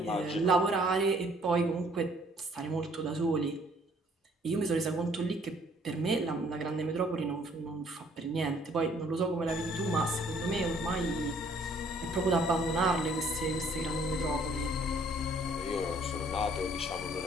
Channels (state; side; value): normal; both; correlation 0.61